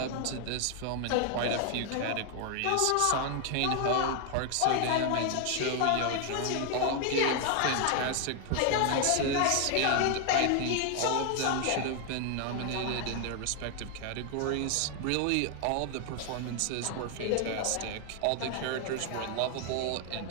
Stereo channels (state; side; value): different; both; correlation 0.00